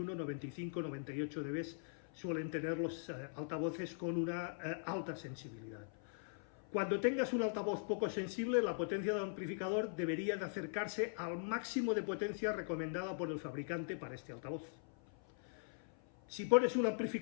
95, 98 dB suelen tener los altavoces con una alta sensibilidad. Cuando tengas un altavoz poco sensible, la potencia del amplificador debería de acercarse al máximo de potencia recomendada por el fabricante para este altavoz. Si pones un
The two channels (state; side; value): silent; right; 50 dB below the other